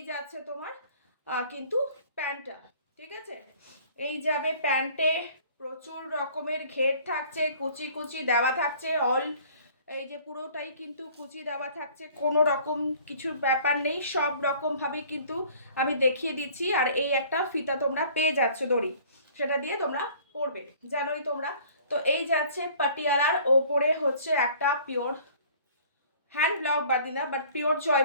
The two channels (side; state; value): both; inverted; correlation -0.52